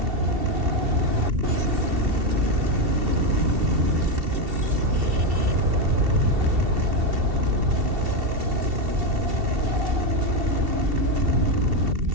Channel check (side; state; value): left; late; 2.7 ms